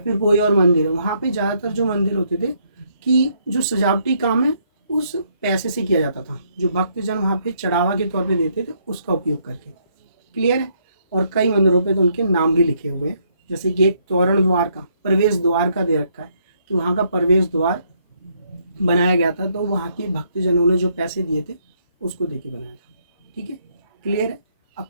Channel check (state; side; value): inverted; both; correlation -0.71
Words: कोई और मंदिर है, वहाँ पे ज़्यादातर जो मंदिर होते थे कि जो सजावटी काम है उस पैसे से किया जाता था, जो भक्तजन वहाँ पे चढ़ावा के तौर पे देते थे उसका उपयोग करके, क्लियर है। और कई मंदिरों पे तो उनके नाम भी लिखे हुए हैं, जैसे कि एक तोरण द्वार का, प्रवेश द्वार का दे रखा है कि वहाँ का प्रवेश द्वार बनाया गया था, तो वहाँ के भक्तजनों ने जो पैसे दिए थे उसको दे के बनाया था, ठीक है, क्लियर है। अब